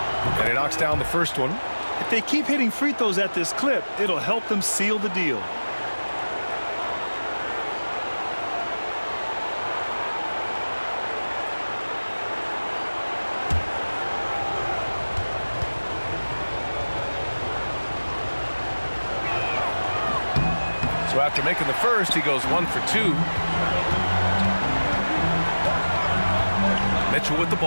And he knocks down the first one. If they keep hitting free throws at this clip, it'll help them seal the deal. So after making the first, he goes 1 for 2. Mitchell with the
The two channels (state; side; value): inverted; both; correlation -1.00